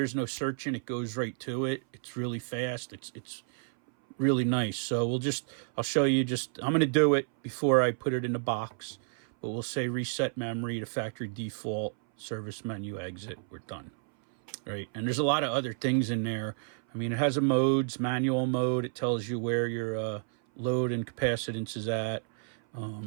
no searching. It goes right to it. It's really fast. It's really nice. So I'll show you I'm going to do it before I put it in the box, but we'll say reset memory to factory default, service menu, exit. We're done. Right. And there's a lot of other things in there. I mean, it has a modes, manual mode. It tells you where your load and capacitance is at.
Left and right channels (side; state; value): left; silent; 57 dB below the other